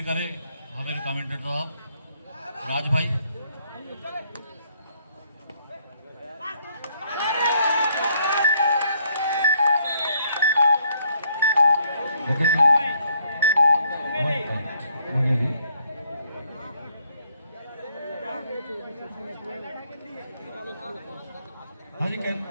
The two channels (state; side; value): inverted; both; correlation -0.69